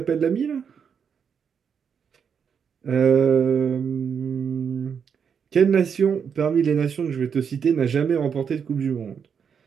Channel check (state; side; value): quieter; left; 7.0 dB